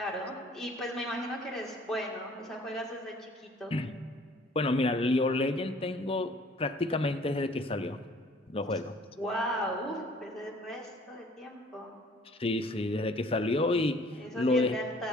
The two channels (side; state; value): both; normal; correlation 0.55